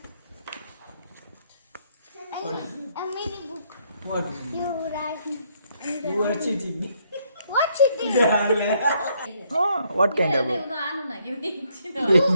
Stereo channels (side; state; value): both; inverted; correlation -0.71